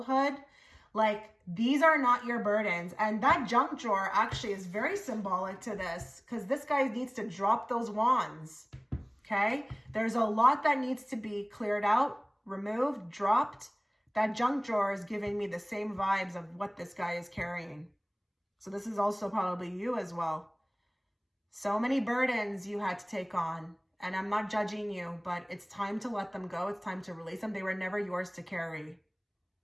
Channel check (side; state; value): both; identical; correlation 1.00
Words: like these are not your burdens. And that junk drawer actually is very symbolic to this, because this guy needs to drop those wands. Okay. There's a lot that needs to be cleared out, removed, dropped. That junk drawer is giving me the same vibes of what this guy is carrying. So this is also probably you as well. So many burdens you had to take on. And I'm not judging you, but it's time to let them go. It's time to release them. They were never yours to carry.